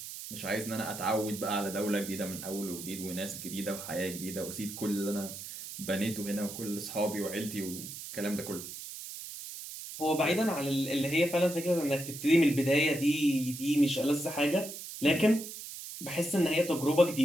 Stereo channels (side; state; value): right; noise; hiss, 10 dB below the sound